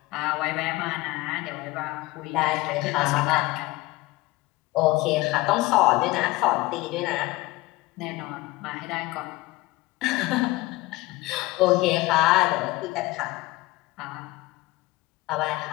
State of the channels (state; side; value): quieter; right; 20.0 dB